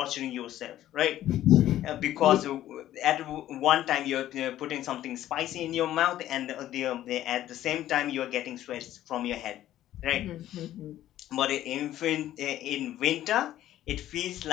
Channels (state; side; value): quieter; right; 13.1 dB